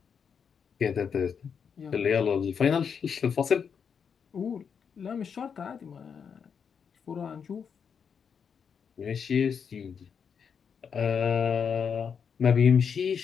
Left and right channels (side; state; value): right; quieter; 6.8 dB